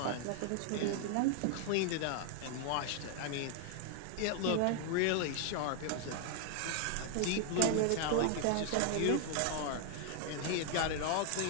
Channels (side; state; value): both; different; correlation 0.00